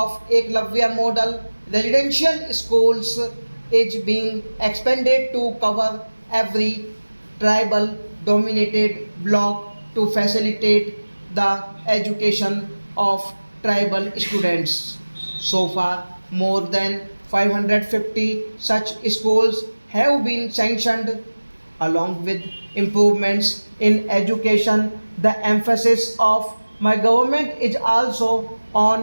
Eklavya model residential schools is being expanded to cover every tribal dominated block to facilitate the education of tribal students. So far, more than 550 such schools have been sanctioned. Along with improvements in education, the emphasis of my government is also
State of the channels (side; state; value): both; inverted; correlation -1.00